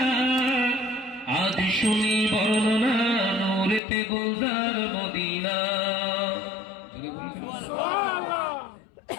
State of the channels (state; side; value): drops out; right; at 3.8 s